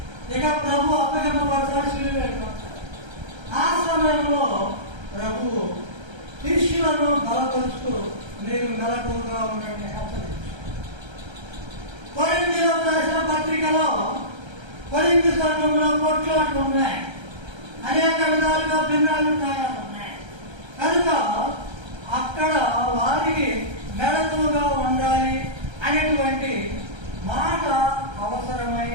ఇక ప్రభు అప్పగింపబడతాడు, శిలువ వెళ్ళిపోతాడు. ఆ సమయంలో ప్రభు శిష్యులను బలపరుస్తూ మీరు మెలకువగా ఉండండి హెచ్చరించారు. కొరింథీయులకు రాసిన పత్రికలో కొరింథీ సంఘంలో కొట్లాట్లు ఉన్నాయి, అనేక విధాలుగా భిన్నాభిప్రాయాలు ఉన్నాయి. కనుక అక్కడ వారికి మెలకువగా ఉండాలి అనేటువంటి మాట అవసరమై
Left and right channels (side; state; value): left; late; 1.3 ms